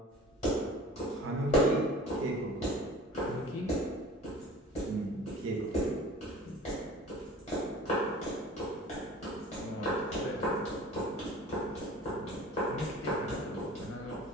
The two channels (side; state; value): both; normal; correlation 0.43